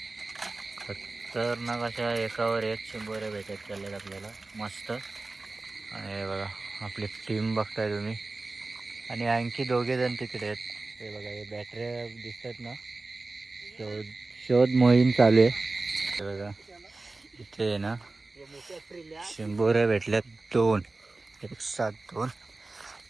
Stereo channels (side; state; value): left; quieter; 3.3 dB